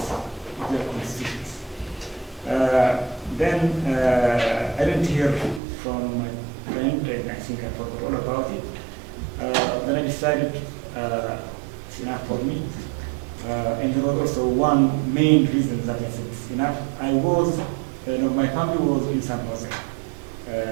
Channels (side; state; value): left; drops out; at 5.6 s